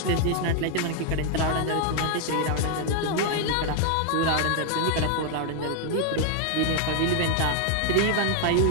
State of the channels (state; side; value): different; both; correlation 0.00